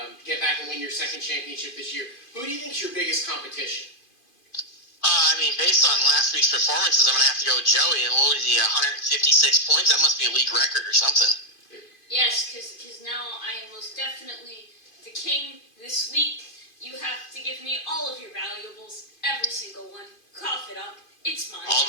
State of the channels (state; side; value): late; right; 2.5 ms